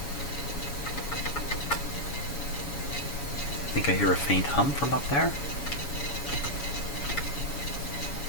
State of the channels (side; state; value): right; late; 7.1 ms